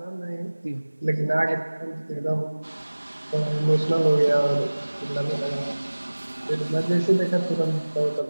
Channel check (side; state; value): both; inverted; correlation -1.00